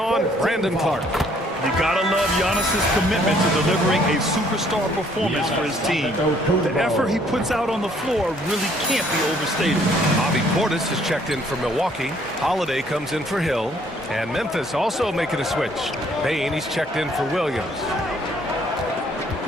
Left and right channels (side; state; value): both; normal; correlation 0.63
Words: Brandon Clark. You gotta love Giannis's commitment to delivering a superstar performance for his team. The effort he puts out on the floor really can't be overstated. Bobby Portis has checked in for Milwaukee. Holiday comes in for Hill. And Memphis also making a switch. Bain, he's checked in for Williams.